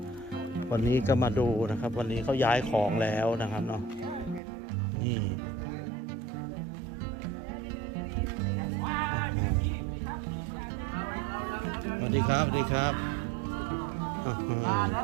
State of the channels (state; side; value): drops out; left; at 4.4 s